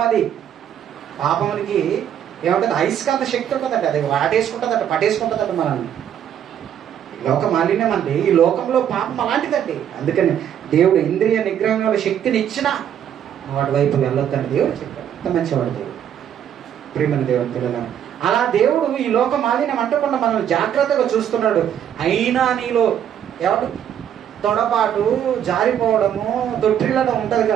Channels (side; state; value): left; quieter; 9.6 dB